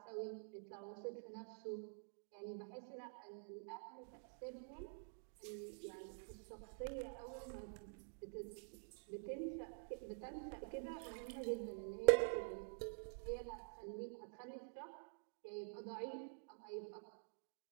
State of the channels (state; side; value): silent; left; digital silence